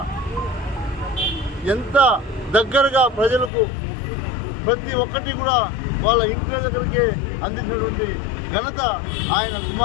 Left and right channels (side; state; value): right; drops out; at 3.5 s